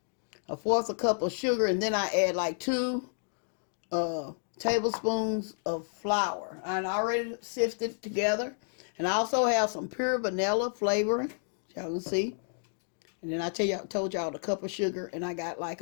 fourth a cup of sugar. And then I add like 2 tablespoons of flour. And I already sifted together. And I also have some pure vanilla flavoring, y'all can see. And then I told y'all the cup of sugar, and I got like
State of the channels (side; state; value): right; silent; digital silence